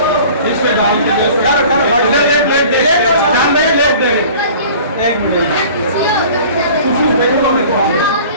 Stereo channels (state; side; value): inverted; both; correlation -0.45